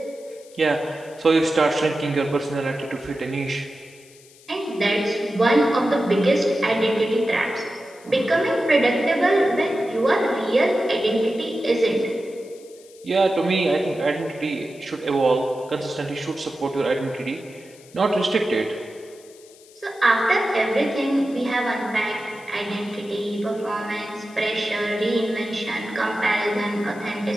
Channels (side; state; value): left; noise; hiss, 25 dB below the sound